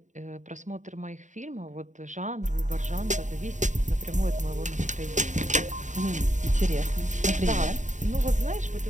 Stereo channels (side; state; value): left; late; 0.36 ms